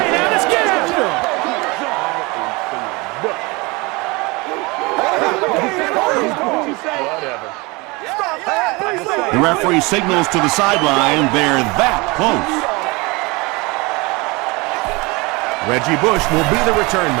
The referee signals to the sideline. They're that close. Reggie Bush will be the return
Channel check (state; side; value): quieter; left; 25.4 dB